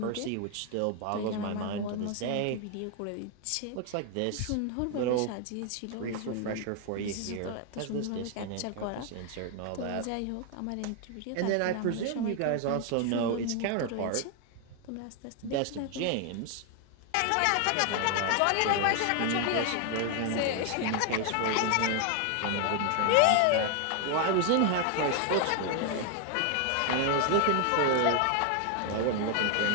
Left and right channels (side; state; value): both; different; correlation 0.00